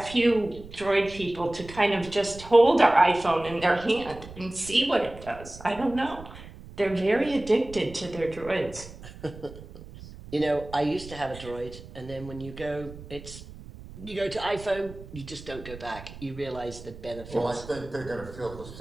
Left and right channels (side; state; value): right; noise; rumble, 16 dB below the sound